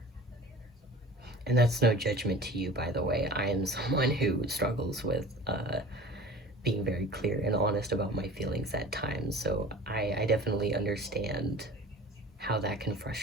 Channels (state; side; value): normal; both; correlation 0.40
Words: and that's no judgment to you, by the way. I am someone who struggles with being very clear and honest about my feelings at times, so I definitely understand how that can